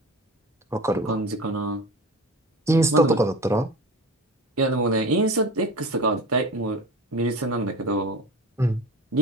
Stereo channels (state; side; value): normal; both; correlation 0.33